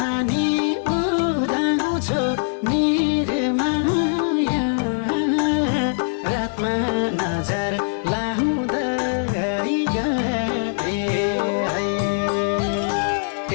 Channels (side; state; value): right; silent; 64 dB below the other